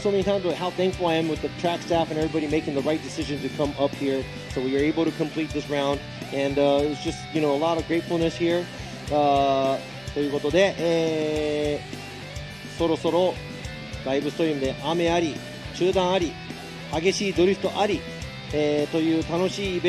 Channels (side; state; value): right; noise; hum, 27 dB below the sound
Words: so many times, but how thankful I am with the track staff and everybody making the right decision to come up here, so we were able to complete this round, and it was just, a lot of gratefulness here. ということで、そろそろライブストリームで雨あり、中断あり、激しいドリフトあり、という楽しいイ